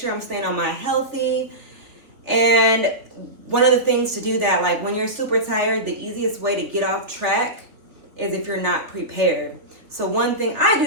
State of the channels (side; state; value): left; late; 3.4 ms